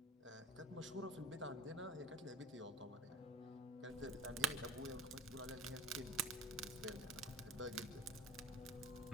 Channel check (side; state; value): both; normal; correlation 0.38